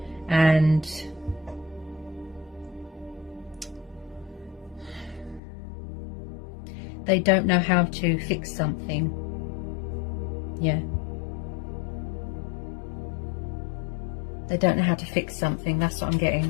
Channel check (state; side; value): drops out; right; at 5.4 s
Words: And they don't know how to fix something. Yeah. They don't know how to fix something. That's what I'm